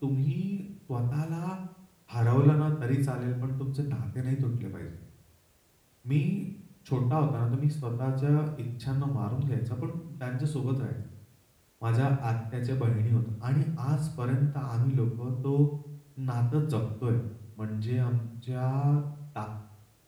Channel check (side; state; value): both; identical; correlation 1.00